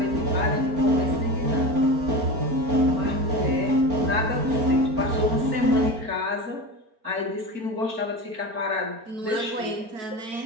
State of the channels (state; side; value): late; left; 4.4 ms